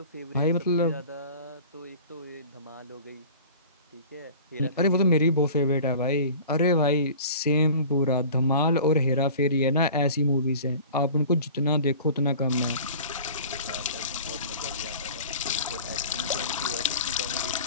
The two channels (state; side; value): inverted; both; correlation -0.42